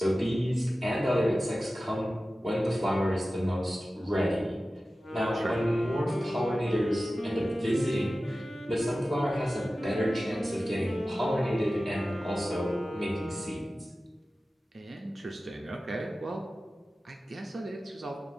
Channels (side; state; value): both; normal; correlation 0.95